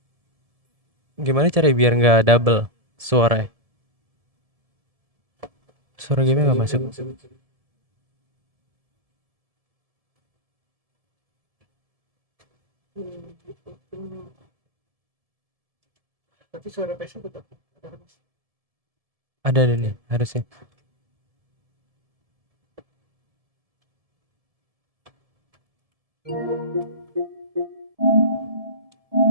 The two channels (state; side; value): late; left; 1.7 ms